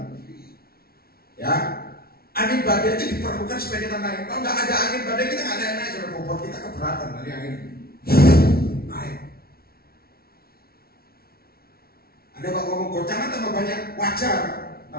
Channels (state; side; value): late; right; 0.44 ms